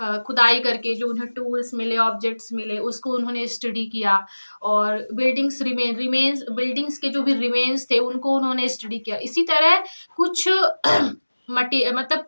खुदाई करके जो उन्हें टूल्स मिले, ऑब्जेक्ट्स मिले, उसको उन्होंने स्टडी किया। और बिल्डिंग्स बिल्डिंग्स के जो भी रिमेन्स थे, उनको उन्होंने स्टडी किया। इसी तरह कुछ मतलब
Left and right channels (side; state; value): both; inverted; correlation -1.00